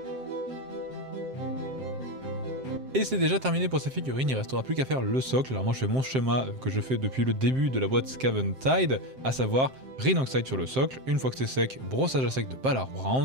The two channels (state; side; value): late; left; 7.6 ms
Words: Et c'est déjà terminé pour ces figurines, il ne restera plus qu'à faire le socle. Alors moi je fais mon schéma que je fais depuis le début de la boîte Scaventide, à savoir Rhinoxide sur le socle, une fois que c'est sec, brossage à sec de Ballard